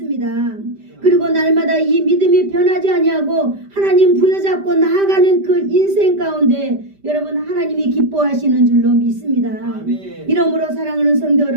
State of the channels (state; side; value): late; left; 5.1 ms